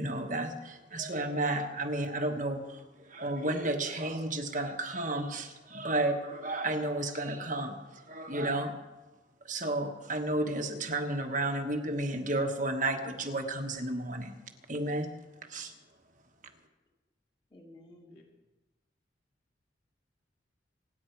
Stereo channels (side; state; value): both; normal; correlation 0.21